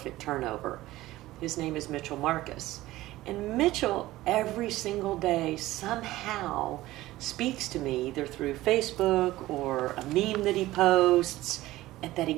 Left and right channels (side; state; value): left; quieter; 16.8 dB